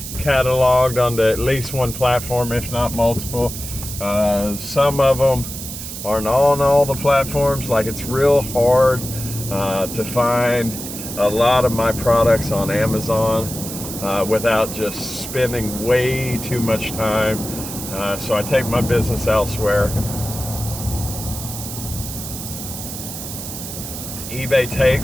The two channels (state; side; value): noise; right; hiss, 9 dB below the sound